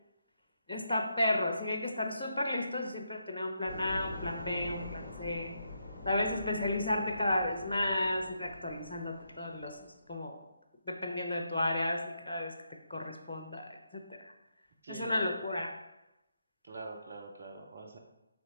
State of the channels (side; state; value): both; inverted; correlation -0.80